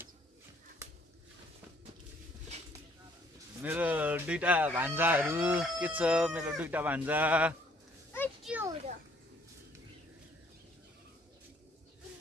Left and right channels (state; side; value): normal; both; correlation 0.62